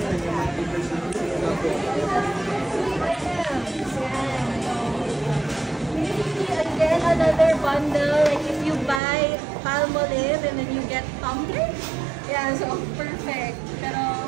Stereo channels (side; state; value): left; drops out; at 9.0 s